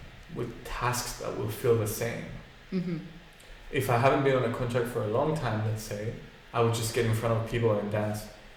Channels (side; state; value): both; identical; correlation 1.00